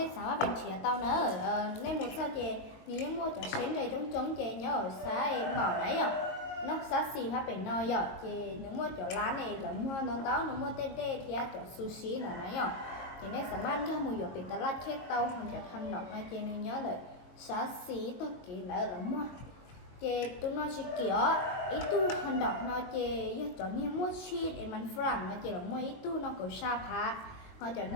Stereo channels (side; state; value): right; late; 22 ms